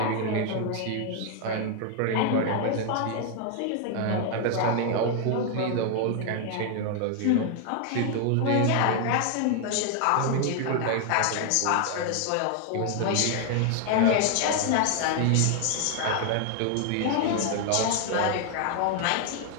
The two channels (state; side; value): different; both; correlation 0.00